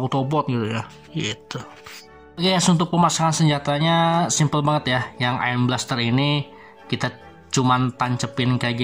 gitu ya gitu. Oke guys, untuk pemasangan senjatanya simple banget ya. Yang Iron Blaster ini kita cuman tancepin kayak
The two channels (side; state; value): both; identical; correlation 1.00